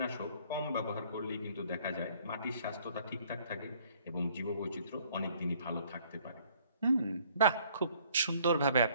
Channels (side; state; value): both; inverted; correlation -0.60